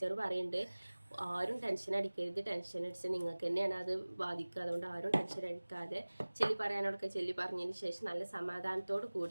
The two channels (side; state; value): both; inverted; correlation -1.00